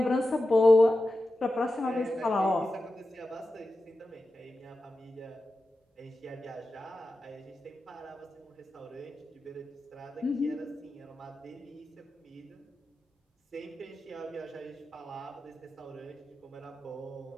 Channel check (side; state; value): both; normal; correlation 0.92